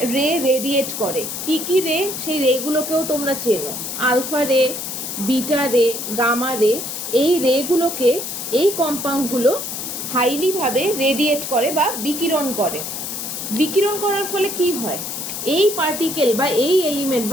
রেডিয়েট করে। কি কি রে? সেই রেগুলোকেও তোমরা চেনো, আলফা রে, বিটা রে, গামা রে। এই রেগুলোকে, এই কম্পাউন্ডগুলো হাইলি ভাবে রেডিয়েট করে বা বিকিরণ করে। বিকিরণ করার ফলে কি হয়? এই পার্টিকেল বা এই এলিমেন্ট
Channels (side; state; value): left; noise; hiss, 5 dB below the sound